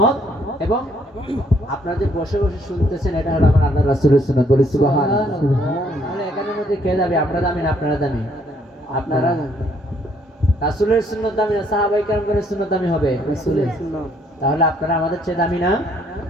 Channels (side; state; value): both; normal; correlation 0.67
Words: এবং আপনারা যে বসে বসে শুনতেছেন এটা হলো আমার আল্লাহ রাসূলের সুন্নাত। বলি সুবহানাল্লাহ। তাহলে এখানের মধ্যে কে যাবে? আমরা দামি না আপনারা দামি? আপনারা। রাসূলের সুন্নাত দামি না সাহাবায়ে কেরামগণের সুন্নাত দামি হবে? রাসূলের সুন্নাত। তাহলে আপনারা আমাদের চেয়ে দামি না?